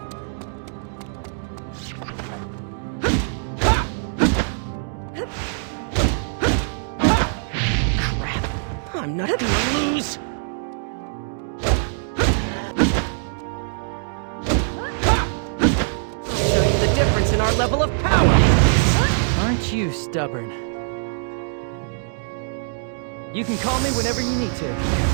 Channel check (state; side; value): silent; left; digital silence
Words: I'm not gonna lose! I'll show you the difference in our level of power! Aren't you stubborn? You can call me whenever you need to.